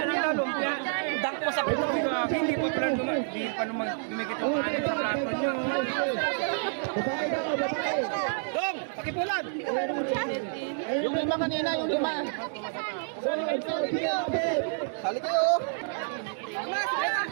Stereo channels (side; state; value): left; silent; digital silence